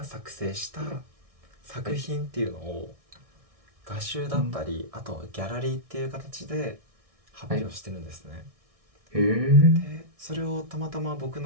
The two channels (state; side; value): late; left; 1.6 ms